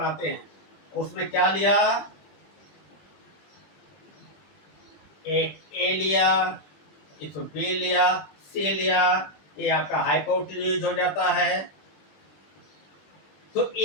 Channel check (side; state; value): right; late; 20 ms